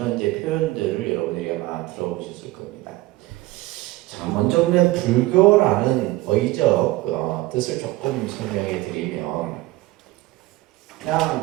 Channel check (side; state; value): left; quieter; 18.8 dB